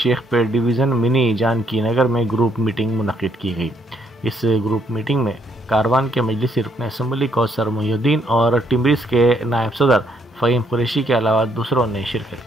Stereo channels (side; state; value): both; normal; correlation 0.70